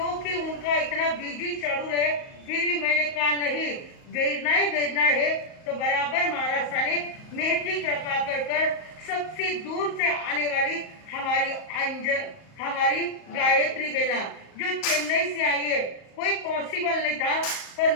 उनका इतना बिजी शेड्यूल है, फिर भी मैंने कहा नहीं, भेजना है तो बराबर महाराष्ट्र ने मेहंदी कृपा कर सबसे दूर से आने वाली हमारी गायत्री बेना जो चेन्नई से आई है, कोई पॉसिबल नहीं था पर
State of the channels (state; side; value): late; right; 38 ms